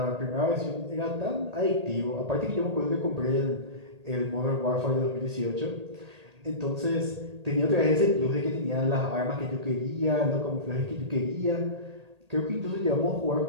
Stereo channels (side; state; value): left; late; 1.8 ms